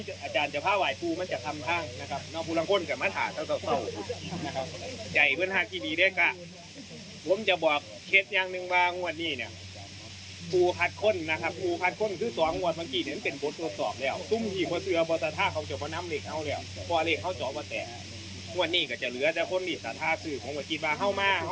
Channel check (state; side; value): identical; both; correlation 1.00